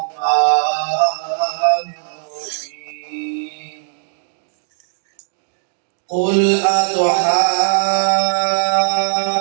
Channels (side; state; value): left; silent; digital silence